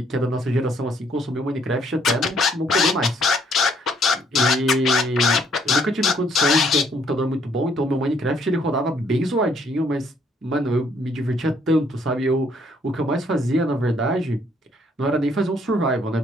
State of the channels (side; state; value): both; normal; correlation 0.66